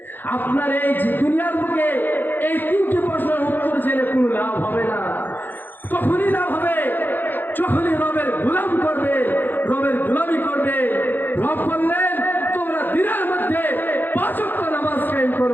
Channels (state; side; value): late; right; 0.090 ms